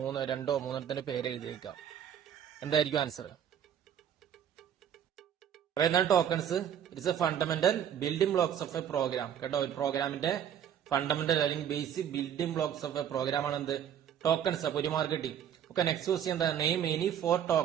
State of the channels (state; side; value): quieter; left; 9.4 dB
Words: പേര് എഴുതിയേക്കുക. എന്തായിരിക്കും ആൻസർ? എന്താണ് tokens? It's a fundamental building blocks of a program കേട്ടോ. ഒരു പ്രോഗ്രാമിന്റെ ഫണ്ടമെന്റൽ അല്ലെങ്കിൽ basic building blocks of a program ആണ് എന്ത്? ടോക്കൺസ്. അപ്പൊ 1 മാർക്ക് കിട്ടി. ഓക്കെ, നെക്സ്റ്റ് ക്വസ്റ്റ്യൻ എന്താ? Name any 4